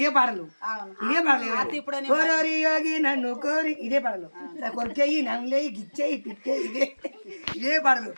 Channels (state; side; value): inverted; both; correlation -1.00